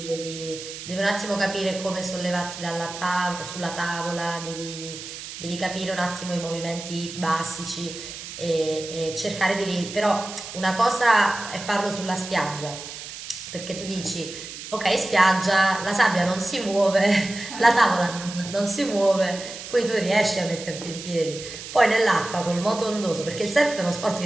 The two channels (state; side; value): noise; right; hiss, 11 dB below the sound